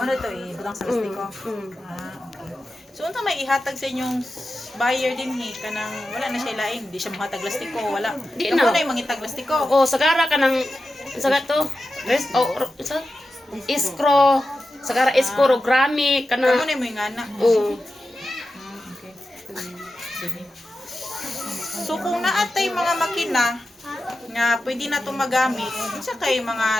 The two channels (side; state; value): both; normal; correlation 0.92